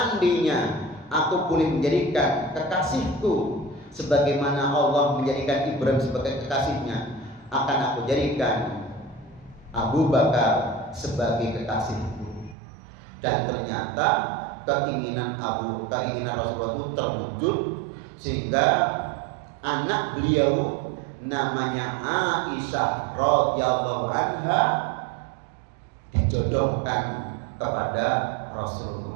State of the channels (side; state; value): left; drops out; at 12.6 s